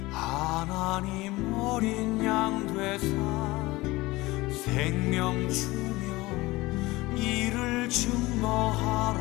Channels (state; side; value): quieter; right; 20.4 dB